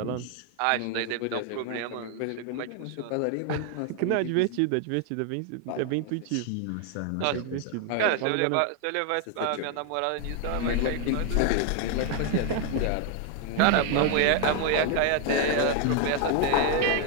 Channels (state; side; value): different; both; correlation 0.00